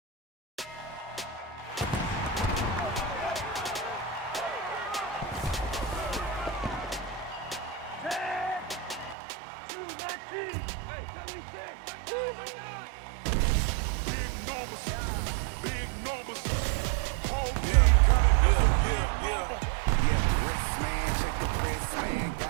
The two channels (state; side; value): drops out; left; at 9.2 s